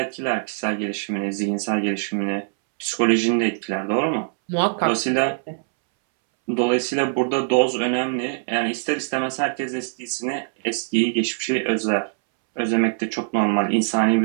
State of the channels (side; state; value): left; silent; 64 dB below the other